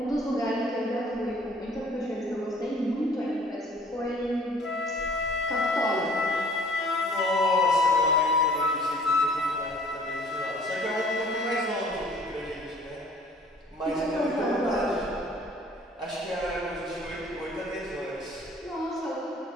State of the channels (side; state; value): both; normal; correlation 0.53